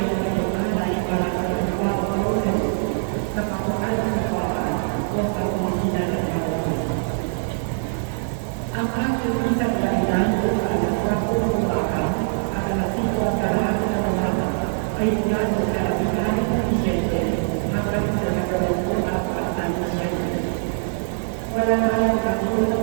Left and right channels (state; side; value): silent; left; 63 dB below the other